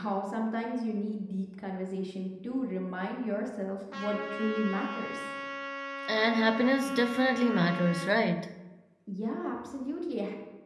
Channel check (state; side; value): identical; both; correlation 1.00